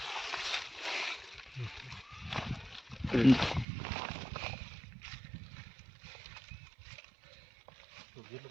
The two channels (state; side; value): drops out; left; at 3.7 s